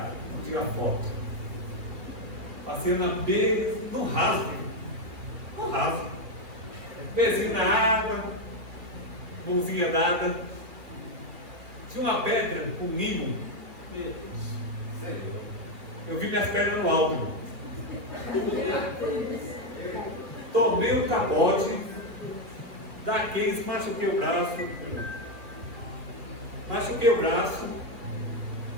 Vamos tirar foto. Passei na beira, no rasgo. No rasgo. Pezinho na água, mãozinha dada. Tinha uma pedra com limo. Meu Deus. Eu vi minhas pernas no alto. Tomei um capote daqueles, machuquei o braço. Machuquei o braço.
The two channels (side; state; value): left; late; 2.4 ms